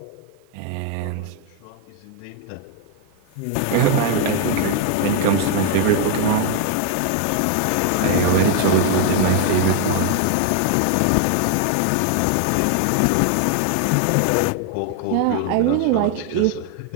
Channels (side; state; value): both; different; correlation 0.00